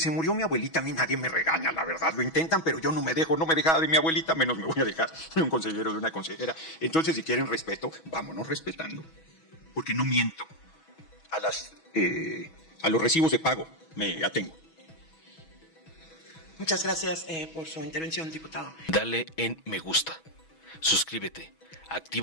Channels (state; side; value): late; right; 6.2 ms